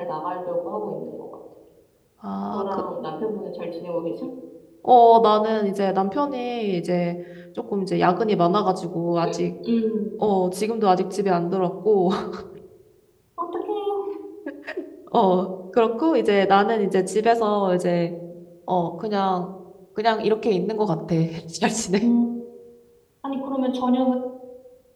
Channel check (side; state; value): both; identical; correlation 1.00